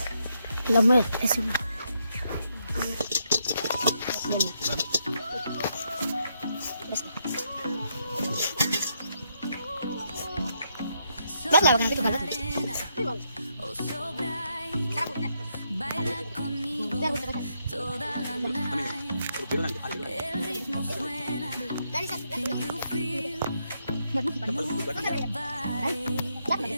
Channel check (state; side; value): inverted; both; correlation -0.78